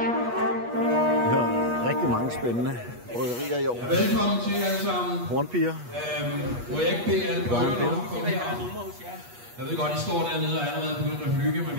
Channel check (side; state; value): left; late; 8.3 ms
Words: Rigtig mange spændende bryggerier i år. Ja, velkommen til alle sammen. Hornpiger. Må jeg ikke bede alle bryggerne om at komme herop? Jeg ved godt, I står dernede og er allerede begyndt at hygge, men